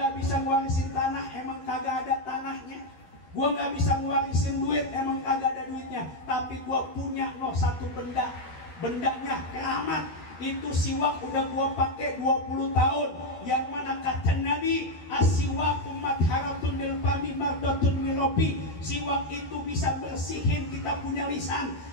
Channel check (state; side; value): late; right; 12 ms